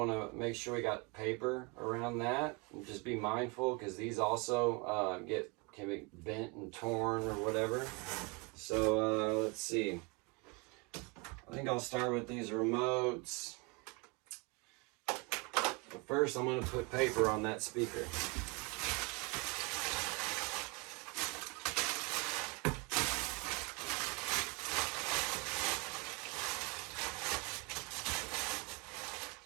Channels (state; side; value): quieter; left; 29.7 dB